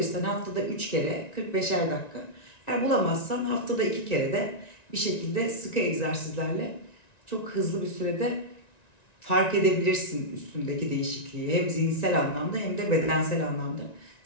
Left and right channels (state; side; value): late; right; 1.9 ms